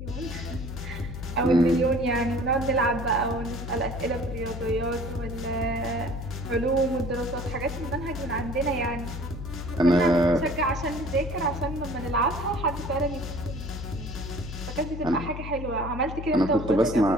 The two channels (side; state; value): left; noise; hum, 8 dB below the sound